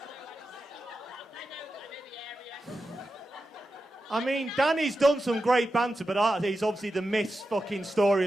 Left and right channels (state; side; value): normal; both; correlation 0.91